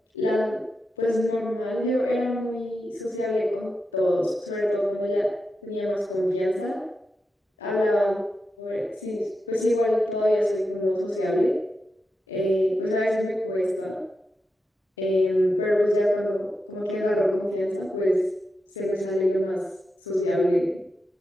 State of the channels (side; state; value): both; normal; correlation 0.88